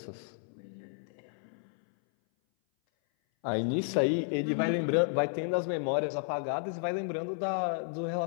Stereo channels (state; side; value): silent; right; 56 dB below the other